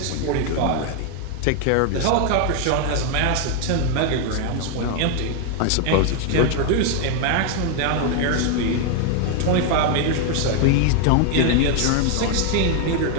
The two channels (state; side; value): different; both; correlation 0.01